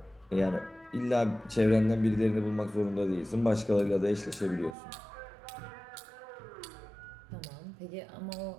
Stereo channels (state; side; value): drops out; left; at 4.8 s